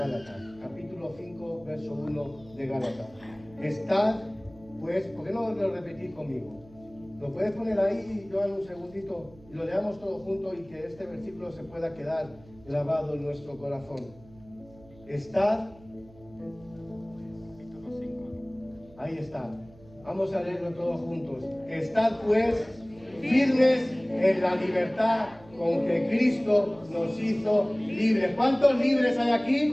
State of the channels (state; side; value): noise; right; hum, 23 dB below the sound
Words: Capítulo 5, verso 1 de Gálatas. Estad, pues, ¿por qué no lo repetís conmigo? Lo puedes poner ahí, Joan, un segundito, y lo leamos todos juntos y que este versículo se pueda quedar grabado en nuestro corazón. Estad, ahí está. Vamos a leerlo todos juntos. Estad pues firmes en la libertad con que Cristo nos hizo libres. ¿Cuántos libres hay